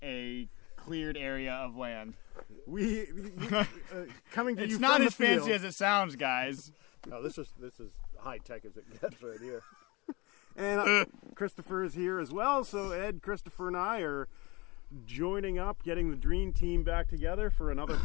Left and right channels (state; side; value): quieter; right; 25.0 dB